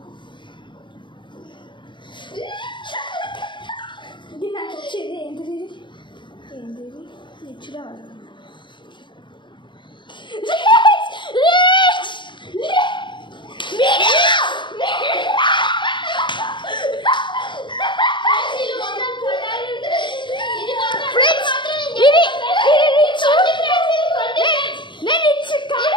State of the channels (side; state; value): right; late; 0.23 ms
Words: ఇది నాకు వచ్చేది ఏంటిది రిచ్గా